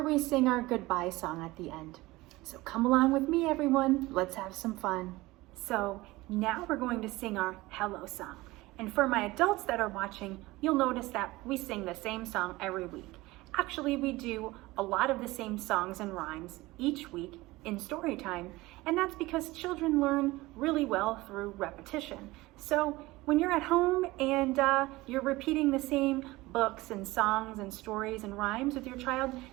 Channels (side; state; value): left; quieter; 20.0 dB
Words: we sing our goodbye song at the end. So come along with me, everyone. Let's have some fun. So now we're going to sing our hello song. And for my adults that are watching, you'll notice that we sing the same song every week. Actually, we do a lot of the same songs and rhymes each week in story time, and that's because children learn really well through repetition. So when you're at home and you're repeating the same books and songs and stories and rhymes with your child,